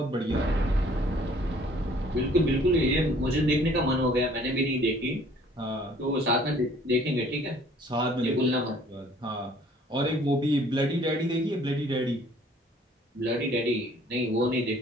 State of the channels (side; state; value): both; normal; correlation 0.56